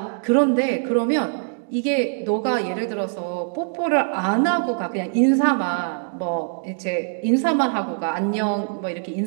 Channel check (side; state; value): left; silent; 64 dB below the other